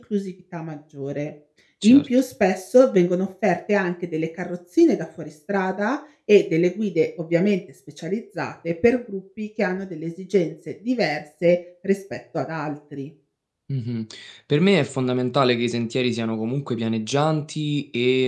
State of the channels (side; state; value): both; identical; correlation 1.00